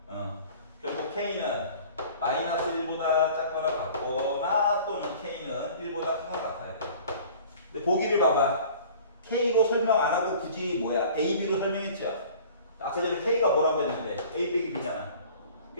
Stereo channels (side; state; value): both; inverted; correlation -0.47